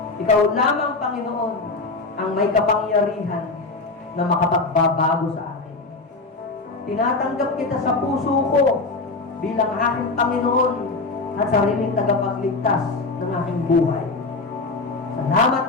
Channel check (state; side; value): quieter; right; 3.6 dB